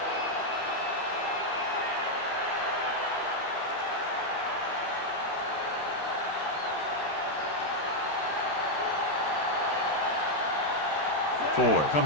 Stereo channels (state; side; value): late; right; 13 ms